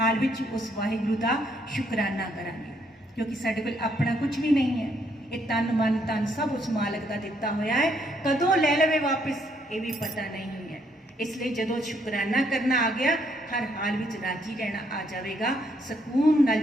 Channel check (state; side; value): normal; both; correlation 0.71